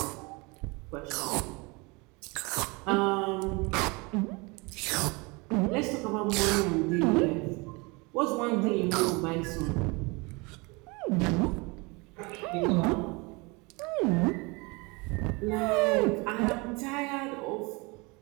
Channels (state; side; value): quieter; left; 27.1 dB